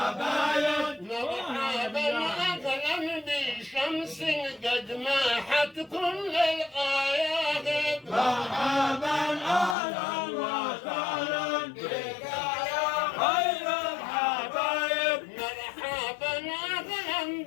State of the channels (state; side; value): drops out; right; at 9.8 s